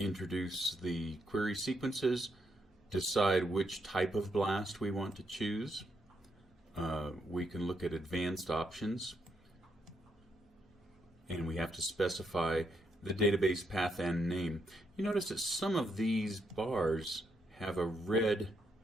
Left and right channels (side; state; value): both; normal; correlation 0.78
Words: the query sequences, decide which type of BLAST we want to choose. We can look at advanced options, and we have to specify the database path and name. You notice that some of these bars have a red